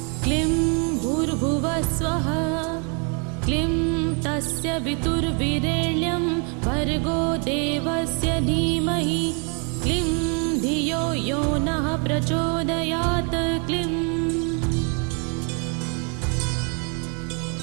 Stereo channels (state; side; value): quieter; left; 37.3 dB